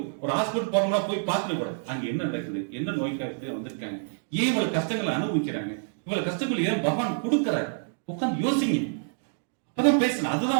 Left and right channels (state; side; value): silent; left; digital silence